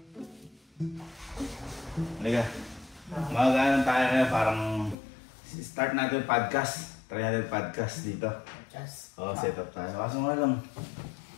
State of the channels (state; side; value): drops out; right; at 5.0 s